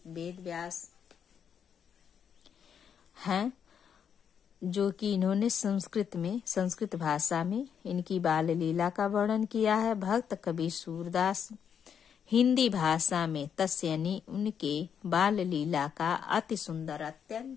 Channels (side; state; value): right; quieter; 7.8 dB